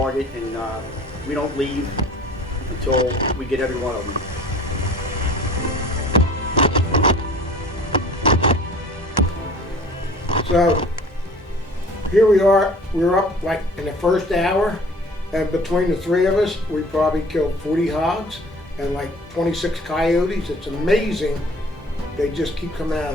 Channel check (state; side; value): normal; both; correlation 0.48